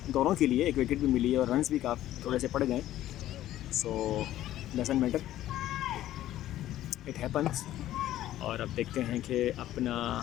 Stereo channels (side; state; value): right; quieter; 13.6 dB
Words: दोनों के लिए, एक विकेट भी मिली है, और रन्स भी काफ़ी थोड़े से पड़ गए, सो डजंट मैटर, इट हैपन्स। और अब देखते हैं कि